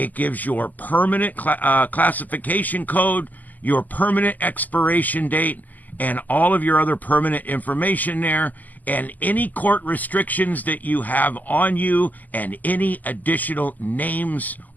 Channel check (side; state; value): right; late; 0.082 ms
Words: gives your permanent classification code, your permanent expiration date, and all of your other permanent information there, and any court restrictions that you have on you, and any additional names